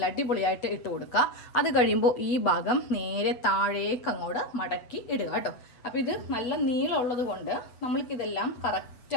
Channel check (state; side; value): late; right; 8.0 ms